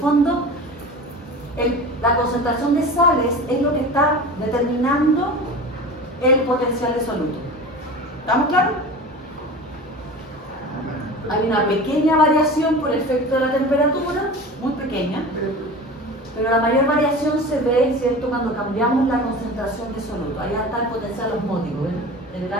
la concentración de sales es lo que está determinando el potencial de soluto. ¿Estamos claros? Hay una pequeña variación por efecto de la temperatura, muy pequeña, pero la mayor variación se ve, ¿cierto?, cuando cambiamos la concentración de soluto. Ahí está el potencial osmótico, ¿ven? En el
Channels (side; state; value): both; normal; correlation 0.34